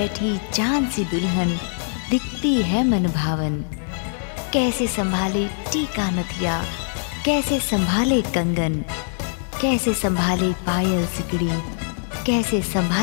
चांद सी दुल्हन दिखती है मन भावन। कैसे संभाले टीका नथिया, कैसे संभाले कंगन, कैसे संभाले पायल सिकड़ी, कैसे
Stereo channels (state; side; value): silent; right; 62 dB below the other